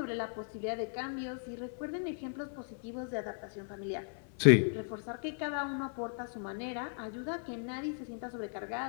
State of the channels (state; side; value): silent; right; 54 dB below the other